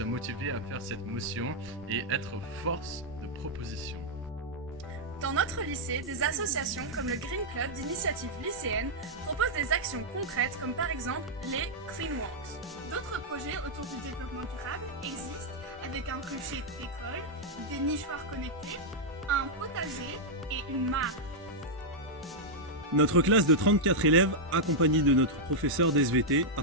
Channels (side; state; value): both; normal; correlation -0.05